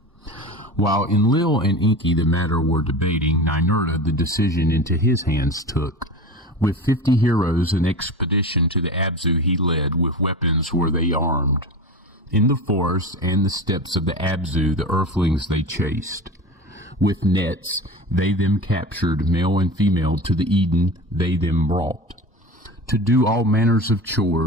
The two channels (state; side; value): normal; both; correlation 0.30